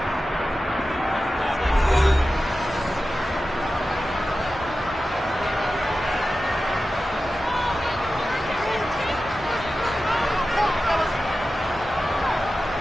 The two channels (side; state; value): both; normal; correlation 0.94